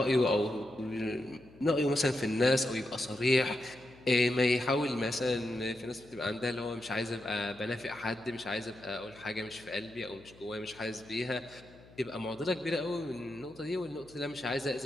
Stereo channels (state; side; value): noise; left; hum, 23 dB below the sound